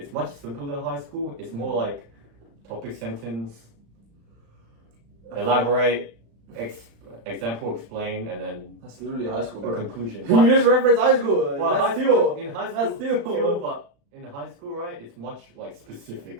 much simpler than high school. It's more like topic sentence, elaborate, example, explain, and then That's literally high school, a bro. conclusion. You just reference high school. Well, That's high school, still. in high school, That's still. but in high school, right, it's much like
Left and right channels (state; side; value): late; left; 35 ms